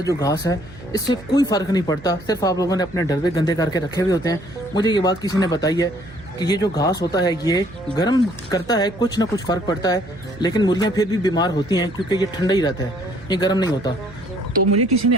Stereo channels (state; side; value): noise; right; hum, 19 dB below the sound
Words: घास है इससे कोई फ़र्क नहीं पड़ता, सिर्फ आप लोगों ने अपने डब्बे गंदे करके रखे हुए होते हैं। मुझे ये बात किसी ने बताई है कि ये जो घास होता है ये गर्म करता है, कुछ ना कुछ फ़र्क पड़ता है, लेकिन मुर्गियाँ फिर भी बीमार होती हैं क्योंकि ये ठंडा ही रहता है, ये गर्म नहीं होता। तो मुझे किसी ने